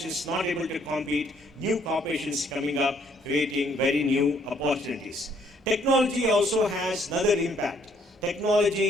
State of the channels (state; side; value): normal; both; correlation 0.66